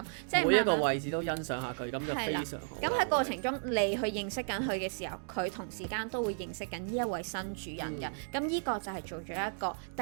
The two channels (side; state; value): left; silent; digital silence